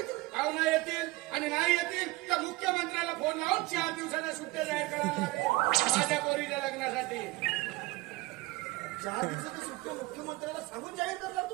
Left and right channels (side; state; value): left; quieter; 21.2 dB